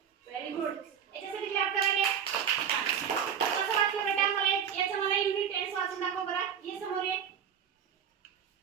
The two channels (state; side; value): quieter; left; 8.1 dB